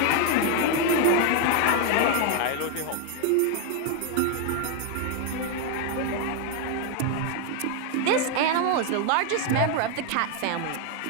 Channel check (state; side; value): different; both; correlation 0.01